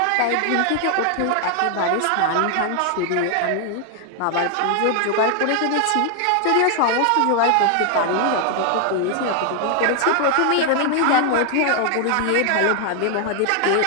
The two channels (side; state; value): both; different; correlation 0.00